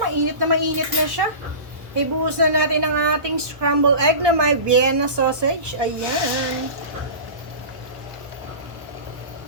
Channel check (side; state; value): left; late; 1.1 ms